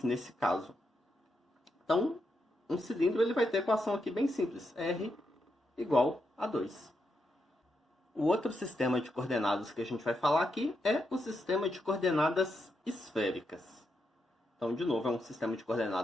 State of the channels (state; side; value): normal; both; correlation 0.83